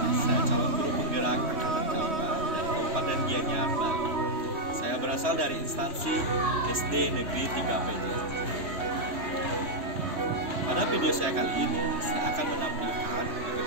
Saya calon guru penggerak angkatan kelima dari Kabupaten Gianyar, Bali. Saya berasal dari instansi SD Negeri 3 PJ. Pada video saya kali ini, saya akan menampilkan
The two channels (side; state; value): left; late; 3.1 ms